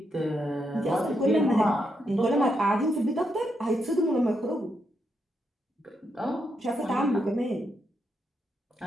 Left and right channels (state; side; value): normal; both; correlation 0.81